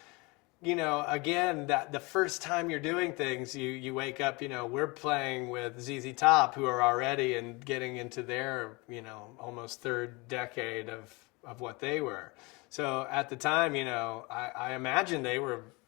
you know, again, that the first time you're doing things, you wake up, you know, we're playing with ZZ Top, who are already and getting into their, you know, almost third decade of what they were. So at the time, you know, I imagine they were,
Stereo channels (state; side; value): quieter; right; 26.3 dB